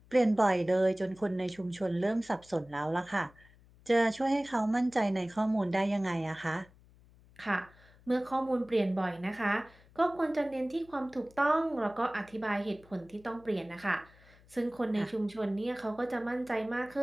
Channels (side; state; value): left; noise; hum, 26 dB below the sound